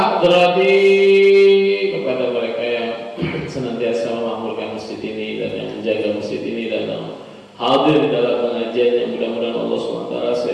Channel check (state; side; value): identical; both; correlation 1.00